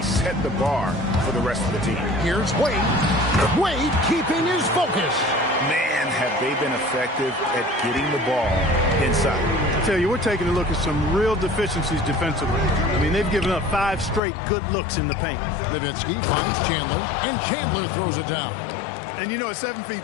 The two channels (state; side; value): drops out; right; at 14.2 s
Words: set the bar for the rest of the team. Here's Wade. Wade keeping his focus. Man, have they been effective at getting the ball inside. I tell you, we're taking a look at some real deficiencies defensively. I mean, they've given up 5 straight good looks in the paint. Nowitzki finds Chandler, and Chandler throws it down. And you know, at 7